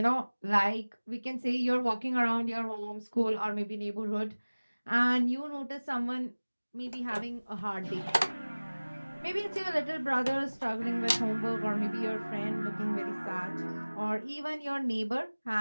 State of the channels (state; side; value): inverted; both; correlation -1.00